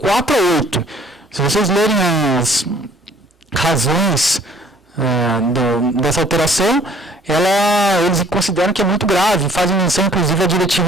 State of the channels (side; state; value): both; normal; correlation 0.56